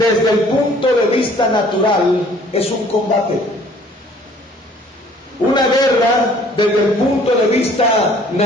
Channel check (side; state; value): both; normal; correlation 0.55